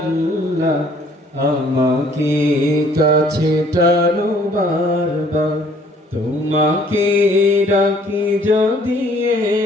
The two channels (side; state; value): both; normal; correlation 0.59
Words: আমাকে কাছে টানো বারবার। তোমাকে ডাকি যদি